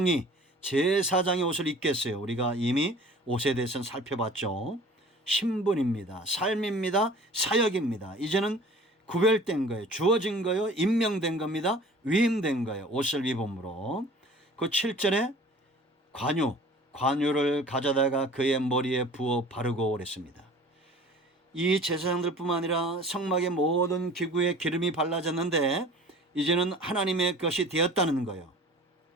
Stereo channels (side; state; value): both; normal; correlation 0.45